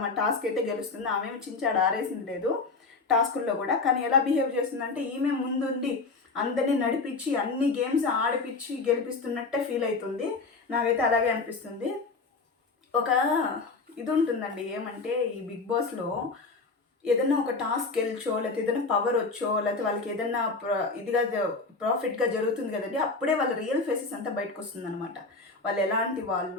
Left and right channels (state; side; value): quieter; right; 4.0 dB